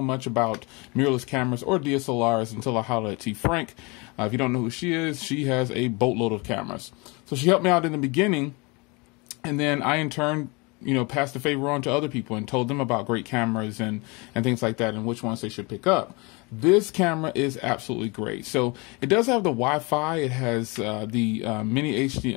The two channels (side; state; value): right; quieter; 27.8 dB